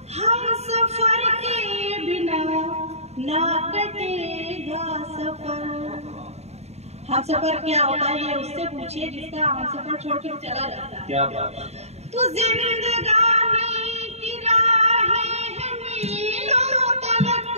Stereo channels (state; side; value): late; left; 0.31 ms